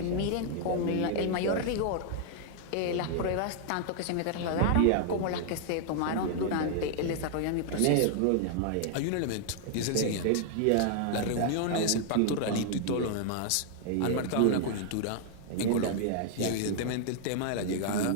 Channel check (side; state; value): both; different; correlation 0.00